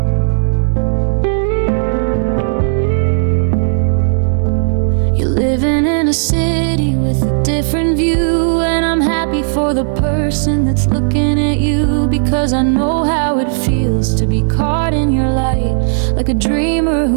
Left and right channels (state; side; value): silent; left; digital silence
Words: A city with a different view, and I'm happy for the person that's looking at you, because I know how it feels to be caught in your light, like a dreamer